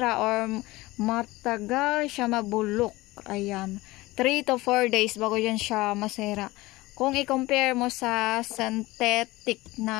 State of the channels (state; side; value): quieter; right; 19.8 dB